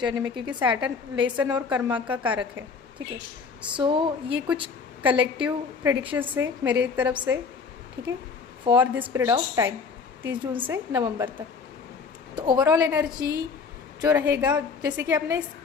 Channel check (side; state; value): right; quieter; 5.3 dB